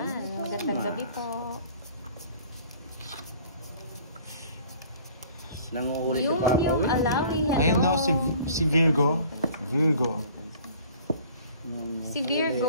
Magandang gabi po. Nanguhuli si Yung Papa Will. Alawi. Hello. Ayun no, si Virgo. Virgo. Si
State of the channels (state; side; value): inverted; both; correlation -0.50